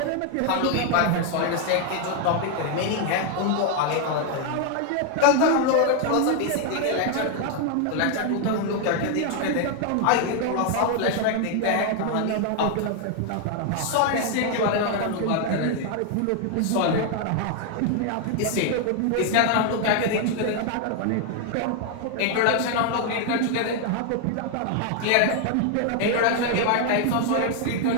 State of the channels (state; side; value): different; both; correlation 0.00